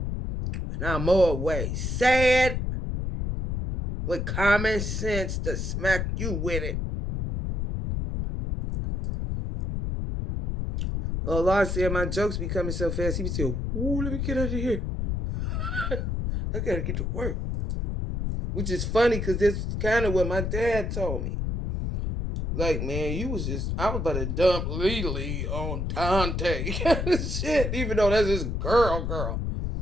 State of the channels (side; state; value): left; noise; rumble, 2 dB below the sound